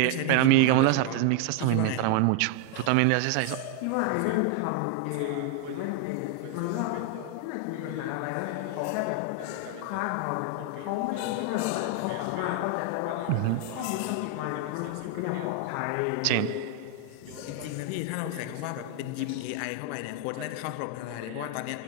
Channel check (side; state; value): both; different; correlation 0.00